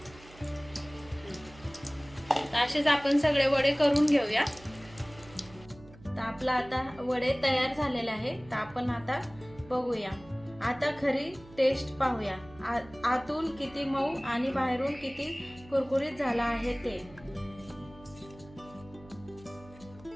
तर असेच आपण सगळे वडे करून घेऊया. तर आपला आता वडे तयार झालेले आहे. तर आपण आता बघूया. आता खरी टेस्ट पाहूया. आतून किती मऊ आणि बाहेरून किती कुरकुरीत झाला आहे ते.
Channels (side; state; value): right; noise; hum, 21 dB below the sound